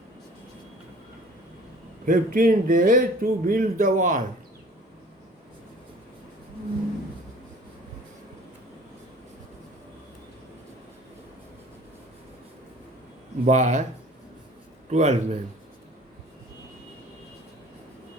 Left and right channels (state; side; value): normal; both; correlation 0.48